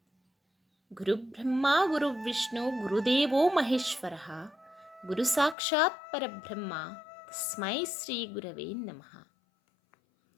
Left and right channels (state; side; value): drops out; right; at 5.6 s